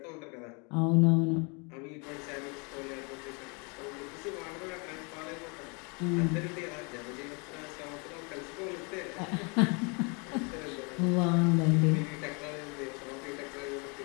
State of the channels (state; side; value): quieter; right; 32.7 dB